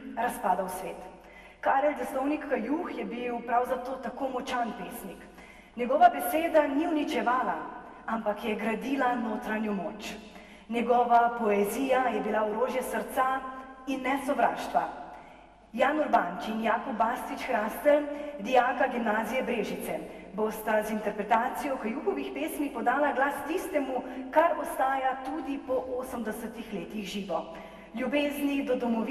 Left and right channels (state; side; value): identical; both; correlation 1.00